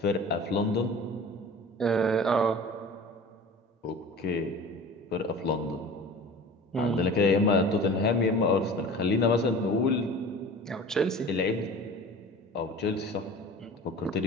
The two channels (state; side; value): normal; both; correlation 0.40